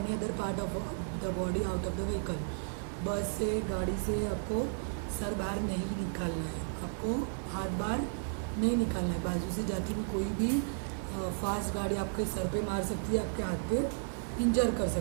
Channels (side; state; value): left; silent; 55 dB below the other